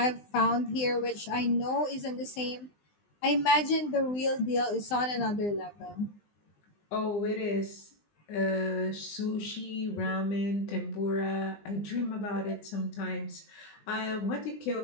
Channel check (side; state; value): right; late; 20 ms